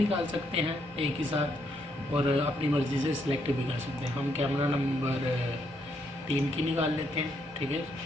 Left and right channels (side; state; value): both; normal; correlation 0.75